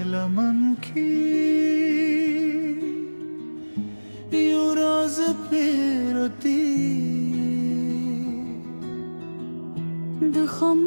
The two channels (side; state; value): both; inverted; correlation -1.00